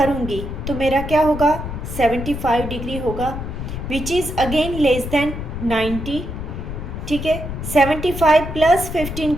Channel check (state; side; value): noise; left; rumble, 7 dB below the sound